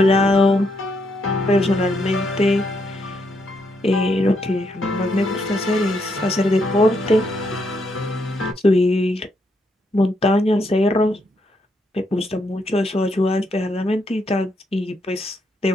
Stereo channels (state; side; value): normal; both; correlation 0.77